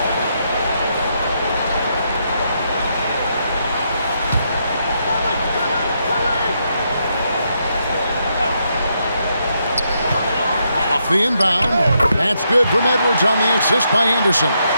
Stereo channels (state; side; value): inverted; both; correlation -0.79